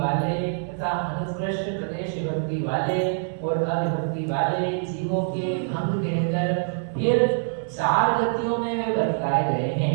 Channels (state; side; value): silent; left; 62 dB below the other